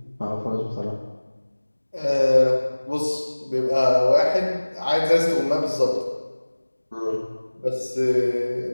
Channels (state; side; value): inverted; both; correlation -1.00